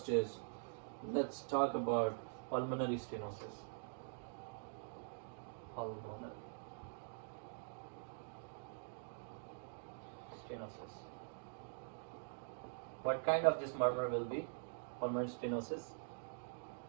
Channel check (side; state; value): left; silent; digital silence